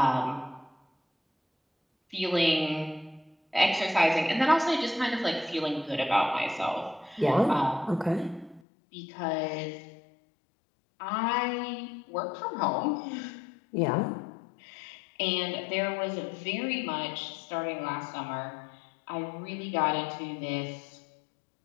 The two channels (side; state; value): right; drops out; at 8.6 s